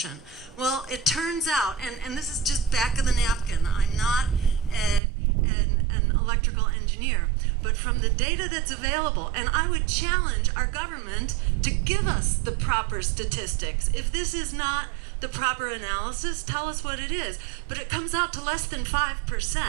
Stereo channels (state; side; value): drops out; left; at 5.0 s